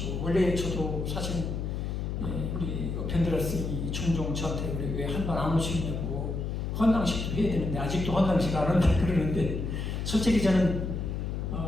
원래 저도 사실 우리 펜드라스님이 종종 저한테 왜 한 번 안 오시냐고 헌당식도 해야 되는데 아직도 헌당식 안 한다 그러는데 솔직히 저는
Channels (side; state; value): left; noise; hum, 3 dB below the sound